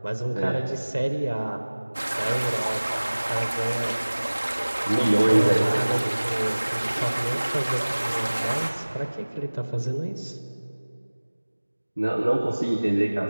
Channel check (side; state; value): both; inverted; correlation -1.00